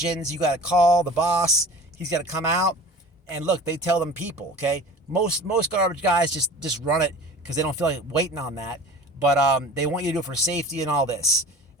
You got to call the boss. He's got to come out. And look, they tell them people, okay? Most garbage guys just run it because they don't feel like waiting on that. But they want you to do it for safety and all this.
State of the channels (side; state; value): both; normal; correlation 0.40